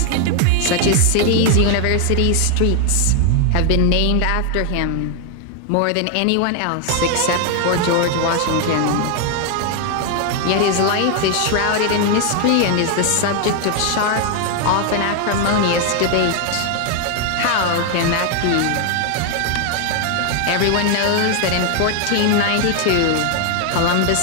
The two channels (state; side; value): different; both; correlation 0.00